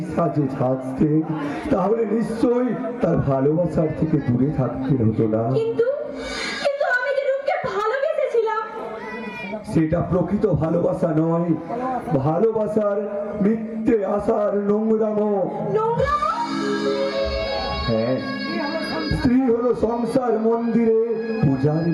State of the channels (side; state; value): both; identical; correlation 1.00